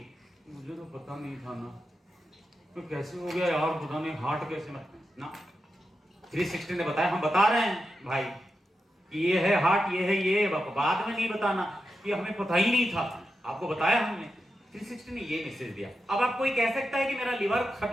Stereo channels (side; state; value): both; normal; correlation 0.88